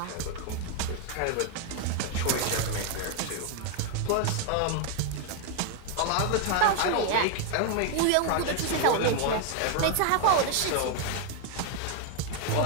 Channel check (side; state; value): both; different; correlation 0.00